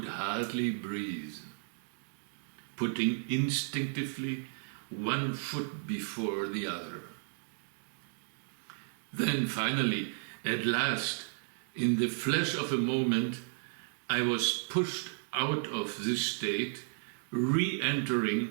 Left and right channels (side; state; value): left; silent; 55 dB below the other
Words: hardly breathe, putting instinctively one foot before the other. Then finally, at last, in the flash of a moment, I was pushed out of this state,